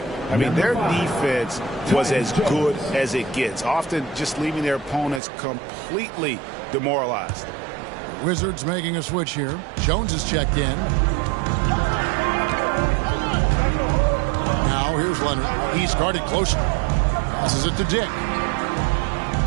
I mean, their defense was as good as it gets, often just leaving their opponents completely demoralized. Wizards making a switch here. Jones is checked in. Now here's Leonard. He's guarded closer. Passes it to Dick.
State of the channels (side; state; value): left; drops out; at 5.2 s